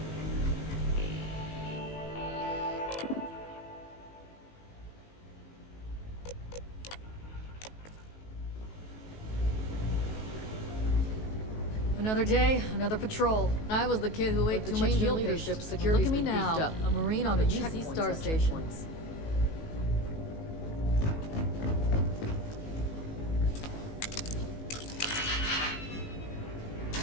Another day, another patrol. I was the kid who ate too much meal leadership. Security. Look at me now, a Marine on a UC star station.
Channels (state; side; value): late; right; 19 ms